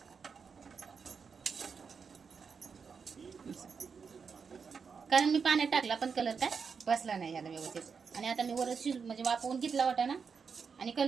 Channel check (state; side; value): quieter; left; 5.8 dB